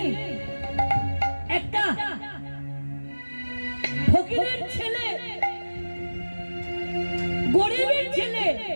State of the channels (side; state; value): both; inverted; correlation -1.00